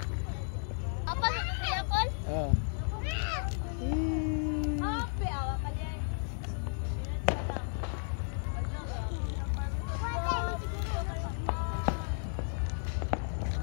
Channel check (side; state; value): right; silent; 55 dB below the other